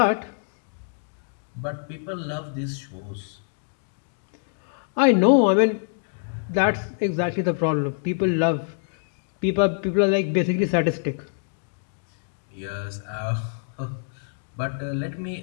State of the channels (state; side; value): silent; right; digital silence